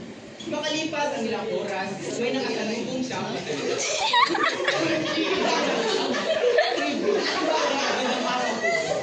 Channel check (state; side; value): identical; both; correlation 1.00